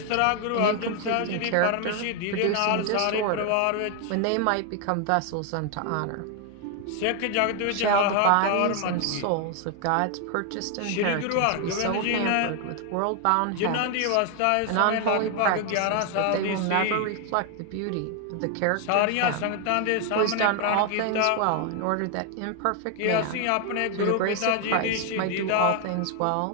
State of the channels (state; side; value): different; both; correlation 0.00